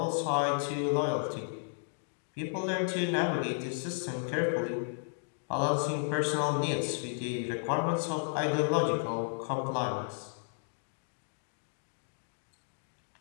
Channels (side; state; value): right; silent; digital silence